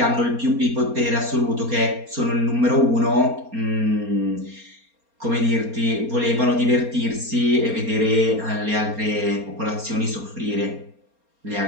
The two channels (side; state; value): left; late; 4.3 ms